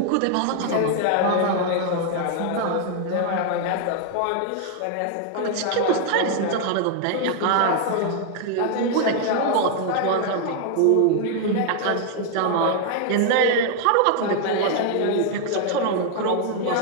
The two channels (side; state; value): both; different; correlation 0.00